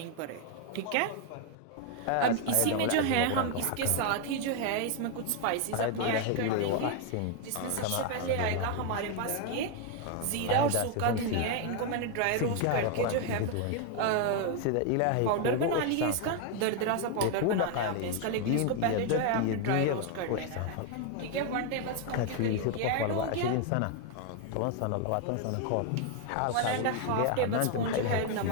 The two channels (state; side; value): different; both; correlation 0.01